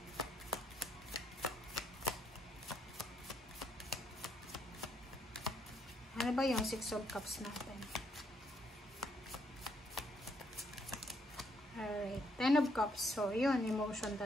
Ano ba yung 6 of Cups natin? Alright. 10 of Cups. So, yun. Emotion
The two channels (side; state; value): both; normal; correlation 0.73